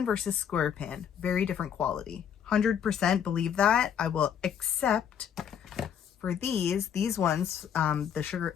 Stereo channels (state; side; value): quieter; right; 8.5 dB